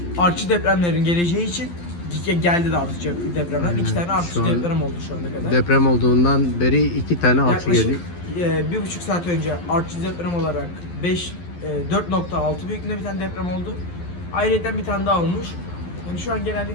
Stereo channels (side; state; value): right; late; 12 ms